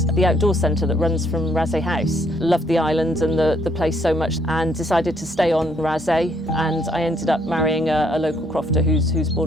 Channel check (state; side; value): normal; both; correlation 0.69